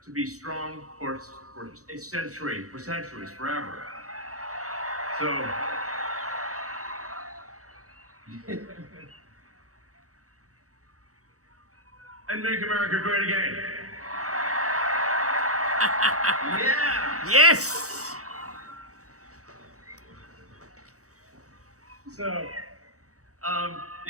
to be strong for a century, for centuries, forever. So, and make America great again. Yeah. Yes. So,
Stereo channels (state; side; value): late; left; 0.65 ms